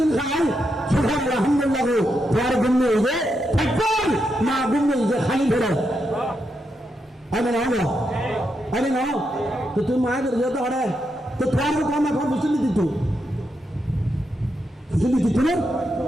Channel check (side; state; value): both; normal; correlation 0.83